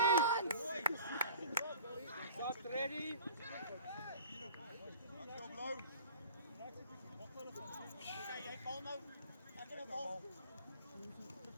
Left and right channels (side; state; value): both; inverted; correlation -0.44